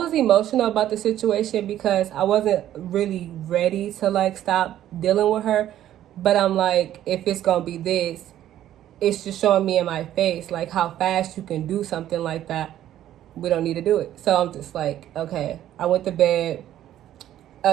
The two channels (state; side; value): quieter; left; 12.1 dB